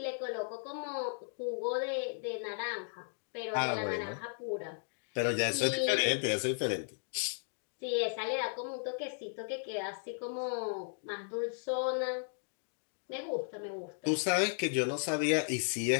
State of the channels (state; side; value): silent; right; digital silence